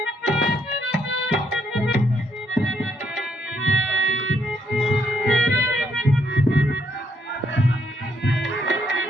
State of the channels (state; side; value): normal; both; correlation 0.73